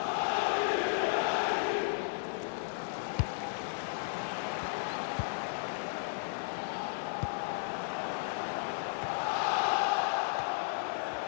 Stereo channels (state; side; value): silent; right; 55 dB below the other